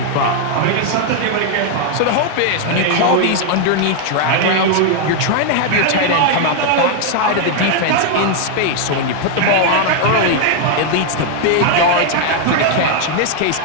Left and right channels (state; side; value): different; both; correlation 0.00